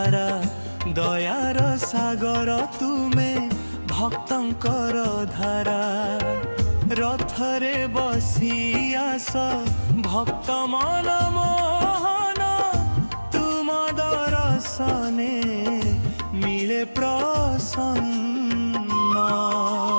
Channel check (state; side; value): inverted; both; correlation -1.00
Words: দয়ার সাগর তুমে ভক্তঙ্কর ধারা। রথরে বসি আস ভক্ত মন মোহন, তুম দর্শনে মিলে প্রসন্ন।